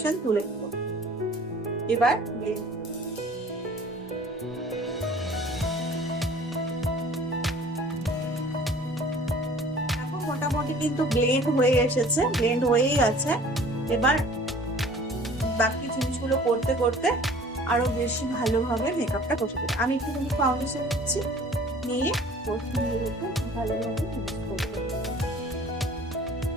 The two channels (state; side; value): normal; both; correlation 0.49